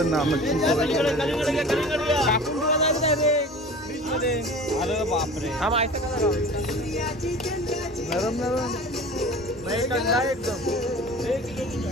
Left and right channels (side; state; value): both; normal; correlation 0.39